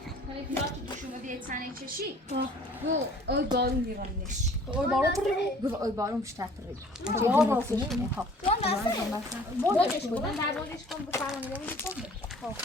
hani pilav tutuşumu diye tane çeşi. Bu oy balım divanmış. oy baro پره Bu oy balım müşterperi. Ya راستش Ha. بودش کن Ben der bolış kon bu falan dedim kon.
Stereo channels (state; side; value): normal; both; correlation 0.52